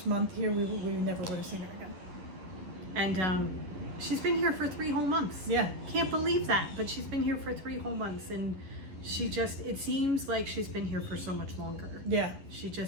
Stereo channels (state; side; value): late; left; 11 ms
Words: month here, we never would have seen her again. And she's been here for 3 whole months. Yeah. Can't believe that, but she's been here for 3 whole months, and it seems like she's been here for so much longer. Yeah. She